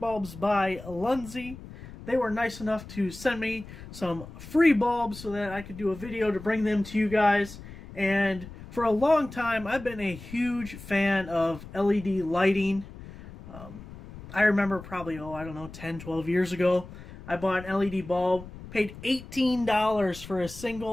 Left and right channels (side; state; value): left; noise; rumble, 15 dB below the sound